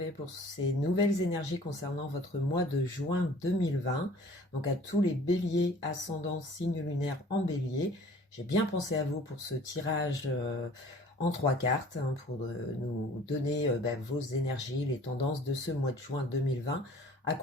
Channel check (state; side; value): normal; both; correlation 0.50